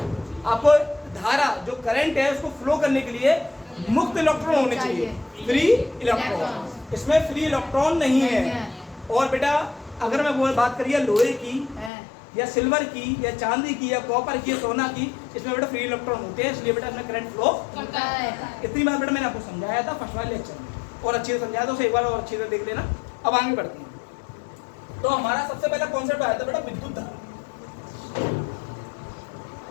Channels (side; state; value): right; drops out; at 11.9 s